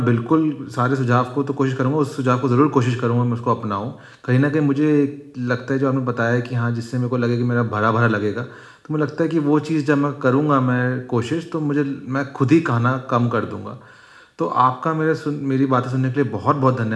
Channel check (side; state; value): both; identical; correlation 1.00